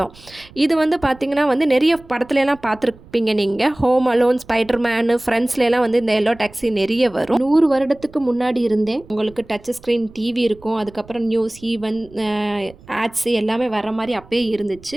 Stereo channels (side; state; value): right; noise; rumble, 23 dB below the sound